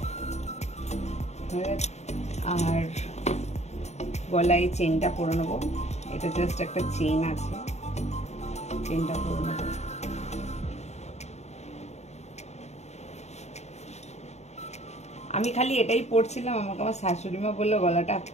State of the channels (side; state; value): right; late; 0.32 ms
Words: আর গলায় চেনটা পরে নেবো, এটা জাস্ট একটা চেন আছে, চেনটা পরে নেবো। আমি খালি এটাই পরছিলাম, আমাকে আমার শাশুড়ি মা বললো গলাটা